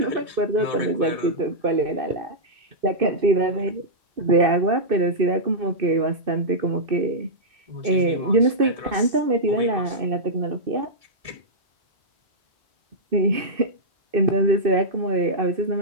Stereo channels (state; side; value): late; left; 2.6 ms